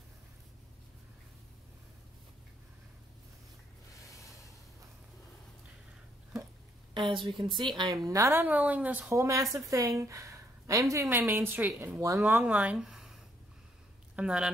As we can see, I am not unrolling this whole massive thing. I am doing my Main Street in one long line. I'm not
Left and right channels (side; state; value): both; normal; correlation 0.71